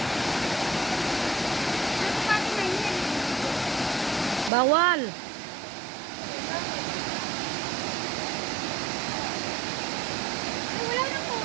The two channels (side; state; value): left; drops out; at 4.5 s